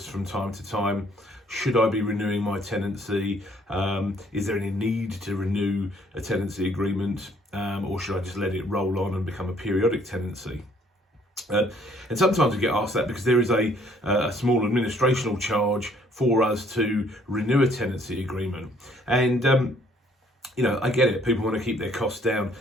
from time to time, should I be renewing my tenancy? Is there any need to renew a tenancy agreement? Or should I just let it roll on and become a periodic tenancy? And sometimes we get asked that because there is a small administrational charge for us to renew a tenancy agreement. And I get it. People want to keep their costs down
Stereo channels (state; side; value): normal; both; correlation 0.62